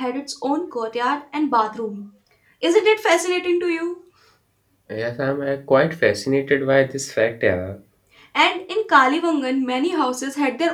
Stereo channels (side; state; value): both; identical; correlation 1.00